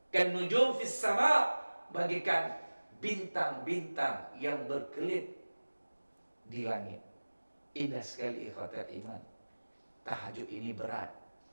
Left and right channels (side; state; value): both; inverted; correlation -1.00